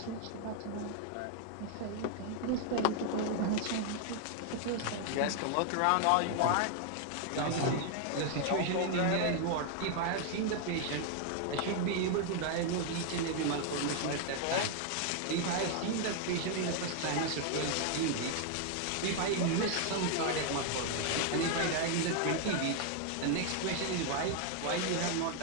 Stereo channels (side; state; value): both; different; correlation 0.00